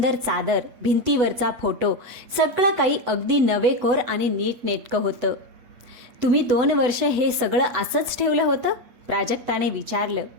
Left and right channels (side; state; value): left; late; 8.0 ms